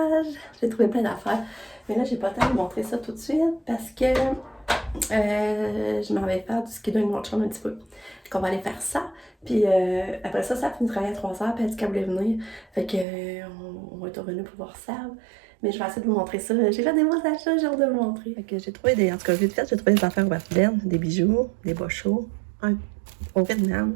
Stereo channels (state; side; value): drops out; left; at 13.1 s